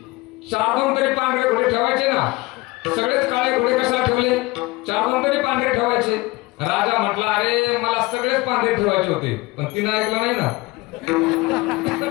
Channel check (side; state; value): right; quieter; 22.1 dB